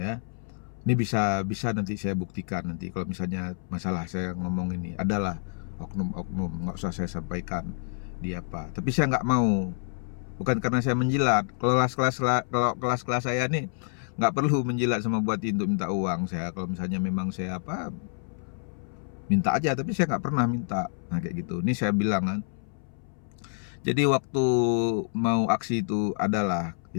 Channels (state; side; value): silent; right; 59 dB below the other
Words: Ini bisa nanti saya buktikan nanti kalau misalnya masalah saya ngomong ini adalah oknum-oknum, nggak usah saya sampaikan di apa. Tapi saya nggak mau, bukan karena saya menjilat. Kalau kelas-kelas saya nih nggak perlu menjilat sama Bupati untuk minta uang. Saya kalau misalnya memang saya apa, minta aja, tapi saya nggak pernah minta. Nah, kayak gitu. Ini saya bilang kan. Jadi waktu mau aksi itu adalah,